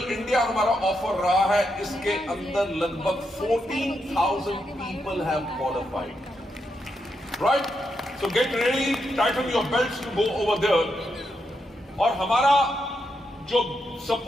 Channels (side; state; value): both; normal; correlation 0.82